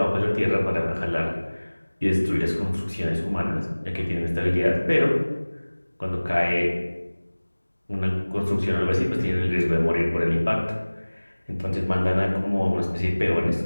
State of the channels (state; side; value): inverted; both; correlation -1.00